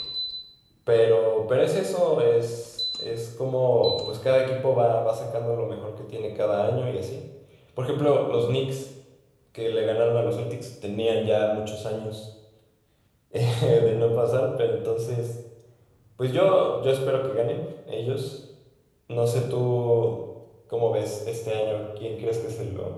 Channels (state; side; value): identical; both; correlation 1.00